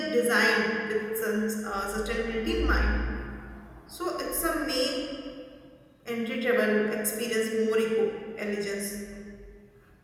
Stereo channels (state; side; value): identical; both; correlation 1.00